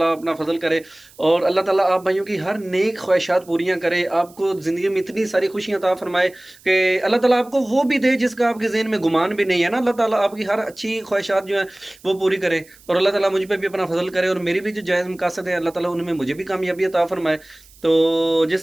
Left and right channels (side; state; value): right; noise; hiss, 26 dB below the sound